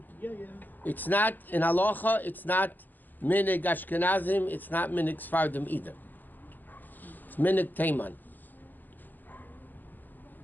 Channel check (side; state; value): right; late; 0.087 ms